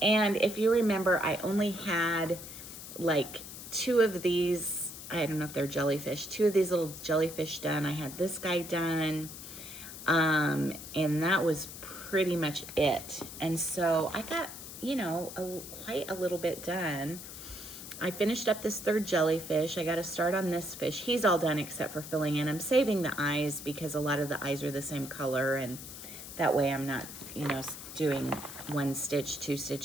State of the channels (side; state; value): left; noise; hiss, 12 dB below the sound